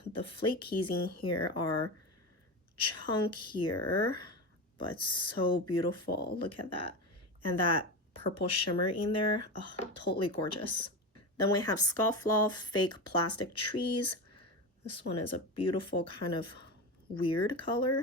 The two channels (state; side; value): normal; both; correlation 0.21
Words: the flakies in here are chunkier, but so beautiful. Look at that. And that purple shimmer in there, oh, totally gorgeous. Then we have Scofflaw Fake Plastic Trees. This one is a beautiful kind of weird